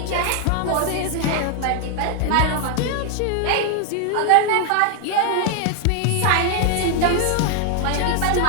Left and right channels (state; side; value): different; both; correlation 0.00